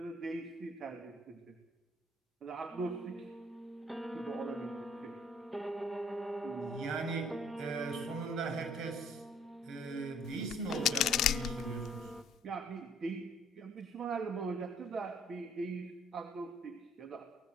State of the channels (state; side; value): normal; both; correlation 0.60